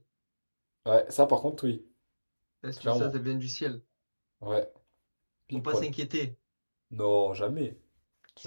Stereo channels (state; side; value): inverted; both; correlation -1.00